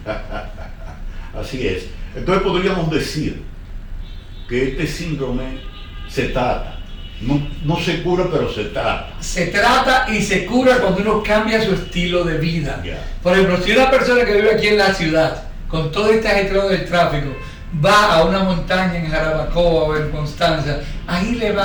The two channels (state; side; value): identical; both; correlation 1.00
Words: así es. Entonces podríamos decir que este síndrome se trata. No se cura, pero se trata. Se trata y se cura cuando uno cambia su estilo de vida. Yeah. Por ejemplo, si una persona que vive aquí en la ciudad, con todo este ajetreo del tráfico, va a una montaña en Jarabacoa o en Constanza, ahí le